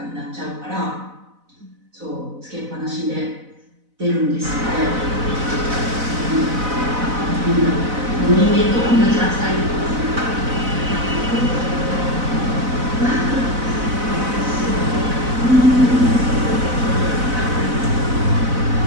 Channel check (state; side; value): late; left; 4.0 ms